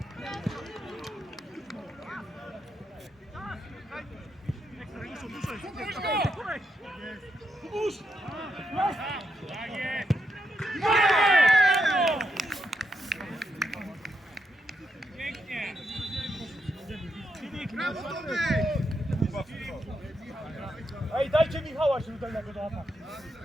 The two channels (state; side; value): normal; both; correlation 0.81